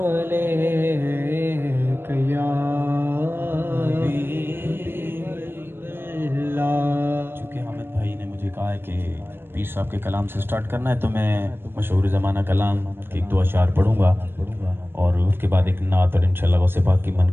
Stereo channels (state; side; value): late; left; 0.10 ms